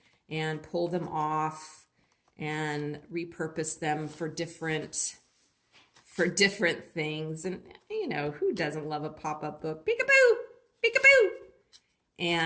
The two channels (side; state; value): both; identical; correlation 1.00